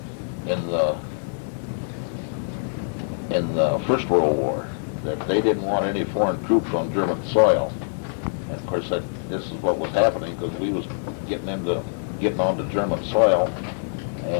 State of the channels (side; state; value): right; silent; digital silence